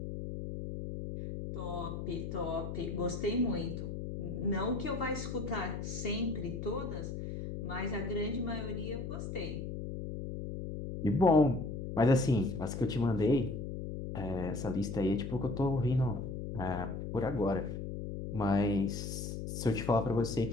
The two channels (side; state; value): left; noise; hum, 5 dB below the sound